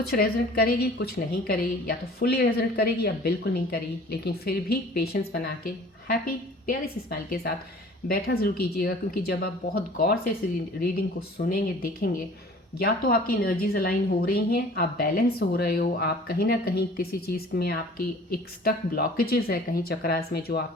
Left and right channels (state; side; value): normal; both; correlation 0.48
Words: रेजोनेट करेगी कुछ नहीं करेगी, या तो फुली रेजोनेट करेगी या बिल्कुल नहीं करेगी, लेकिन फिर भी पेशेंस बना के हैप्पी प्यारी सी स्माइल के साथ बैठा ज़रूर कीजिएगा, क्योंकि जब आप बहुत गौर से इस रीडिंग को सुनेंगे, देखेंगे, या तो आपकी एनर्जीज अलाइन हो रही हैं, आप बैलेंस हो रहे हो, आप कहीं ना कहीं किसी चीज़ में आपकी एक स्टक ब्लॉकेजेस है कहीं चक्रास में जो